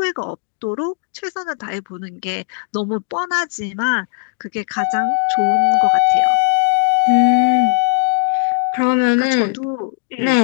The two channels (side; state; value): right; silent; digital silence